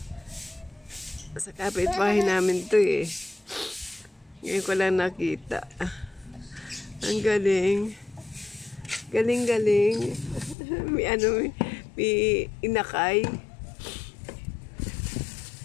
Sa kapitbahay namin to eh. Ngayon ko lang nakita. Ang galing. Galing-galing. May inakay.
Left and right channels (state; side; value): drops out; right; at 10.6 s